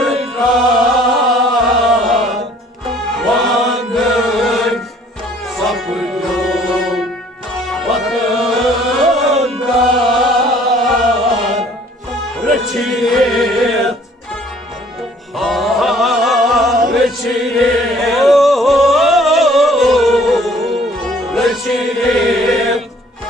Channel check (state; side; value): normal; both; correlation 0.57